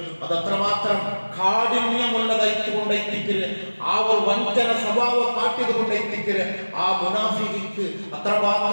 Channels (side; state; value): both; inverted; correlation -1.00